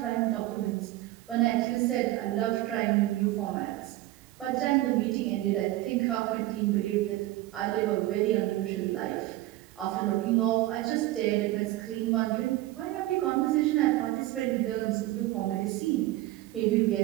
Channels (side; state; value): left; quieter; 16.6 dB